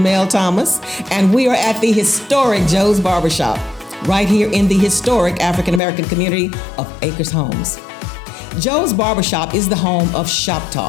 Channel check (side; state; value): right; drops out; at 5.8 s